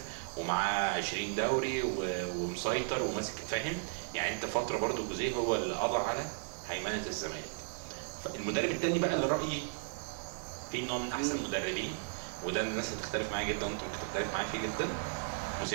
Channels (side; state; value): left; silent; digital silence